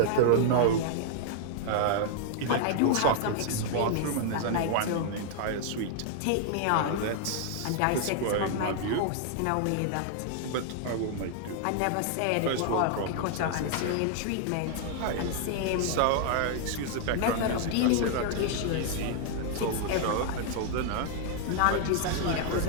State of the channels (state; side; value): different; both; correlation 0.00